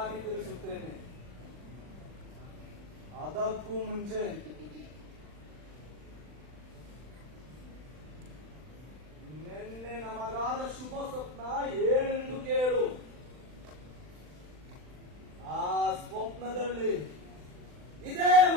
ತಿಳಿಸುತ್ತೇನೆ. ಅದಕ್ಕೂ ಮುಂಚೆ ನಿನ್ನೆ ನಮಗಾದ ಶುಭ ಸ್ವಪ್ನ ಏನೆಂದು ಕೇಳು. ಆ ಸ್ವಪ್ನದಲ್ಲಿ ಇದೇ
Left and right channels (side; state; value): left; late; 39 ms